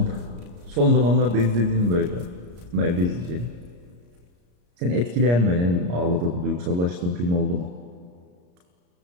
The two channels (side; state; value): left; late; 34 ms